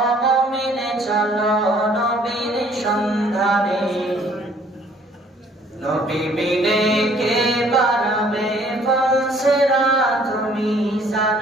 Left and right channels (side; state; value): both; normal; correlation 0.59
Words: মুমিনে চলো নবীর সন্ধানে নবী বিনে কে বাড়াবে ফলসেরা তুমি